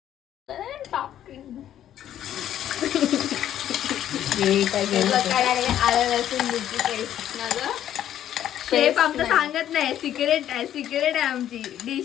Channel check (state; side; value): quieter; right; 11.1 dB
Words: शेफ आमचं सांगत नाही, सिक्रेट आहे आमची